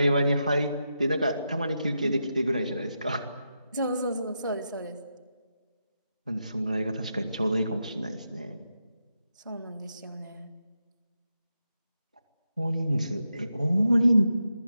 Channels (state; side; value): inverted; both; correlation -0.86